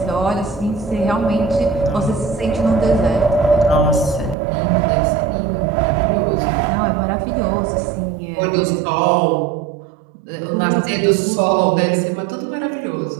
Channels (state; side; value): drops out; left; at 4.4 s